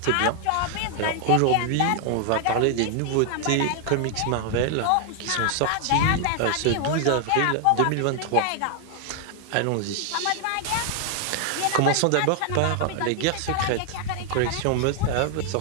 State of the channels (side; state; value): both; different; correlation 0.00